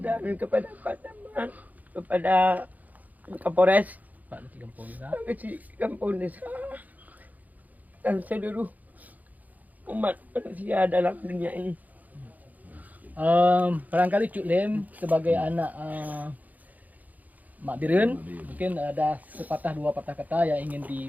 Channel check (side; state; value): left; late; 0.079 ms